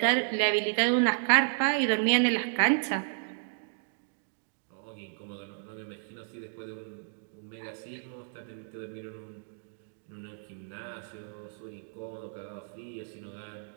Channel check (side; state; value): left; silent; digital silence